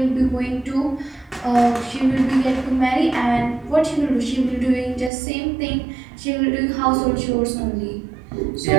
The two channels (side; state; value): left; drops out; at 5.1 s